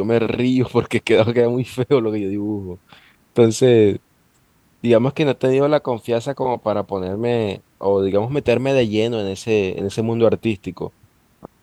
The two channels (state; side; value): identical; both; correlation 1.00